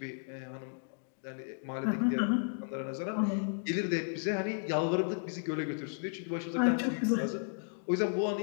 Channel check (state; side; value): silent; right; digital silence